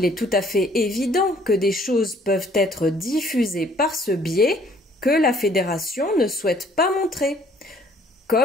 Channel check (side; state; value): both; normal; correlation 0.60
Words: est tout à fait évident que des choses peuvent être diffusées par ce biais que la Fédération ne souhaite pas montrer,